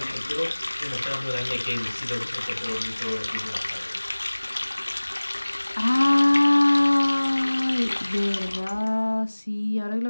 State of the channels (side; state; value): both; inverted; correlation -1.00